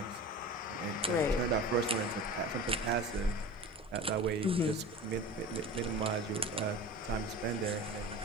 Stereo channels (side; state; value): both; normal; correlation 0.35